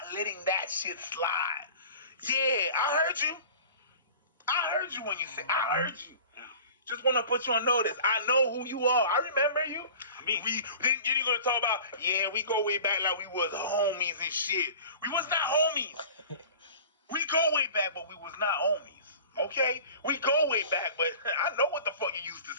letting that shit slide. Yeah, I heard you. I heard you when you said, I heard you. Just want to put you on notice. I know who you are. I remember you. Then you're gonna talk about, yeah, we go way back like we was homies and shit. We was not homies. We go way back, but we was not homies. Okay? We go way back, but I know what the fuck you used to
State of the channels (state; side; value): inverted; both; correlation -0.40